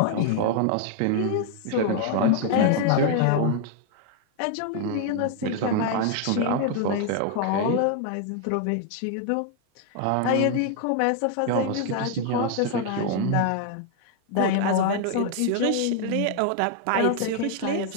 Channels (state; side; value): different; both; correlation 0.00